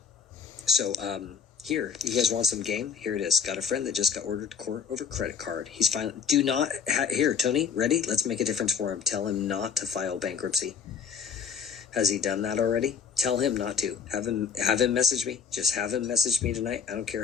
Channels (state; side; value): quieter; right; 6.5 dB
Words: So here, you guys want some game? Here it is. Got a friend that just got ordered to court over credit card. He's finally... Here, Tony, ready? Let's make a difference for him. Tell him not to file bankruptcy. Has he done that already? Tell him not to. Have him message me. Just have him message me tonight. I don't